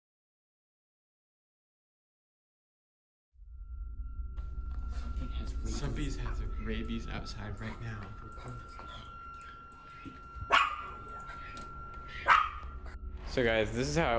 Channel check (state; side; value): identical; both; correlation 1.00